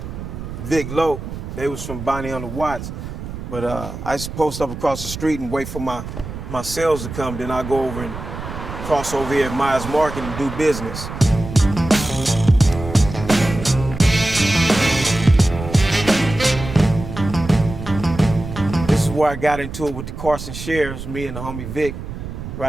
Vic Lowe. They was from Bonnie on the Watts. But I used to post up across the street and wait for my sales to come. Then I go over and cross over here at Miya Market and do business. This is where I got into it with the Carson shares, me and the homie Vic,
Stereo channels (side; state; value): right; noise; rumble, 9 dB below the sound